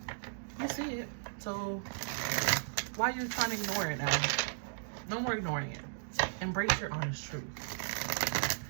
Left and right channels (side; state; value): left; silent; digital silence